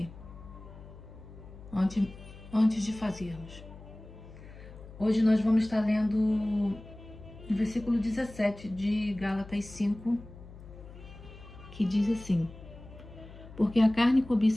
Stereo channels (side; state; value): left; noise; hum, 17 dB below the sound